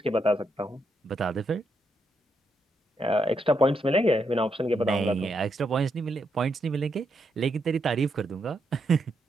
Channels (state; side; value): normal; both; correlation 0.80